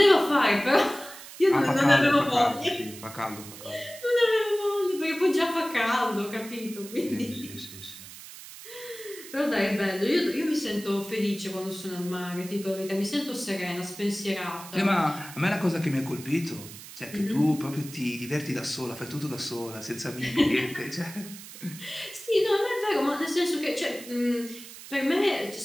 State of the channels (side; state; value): right; noise; hiss, 15 dB below the sound